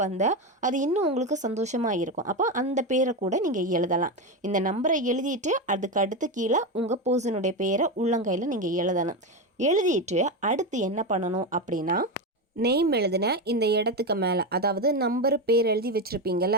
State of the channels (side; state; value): both; normal; correlation 0.14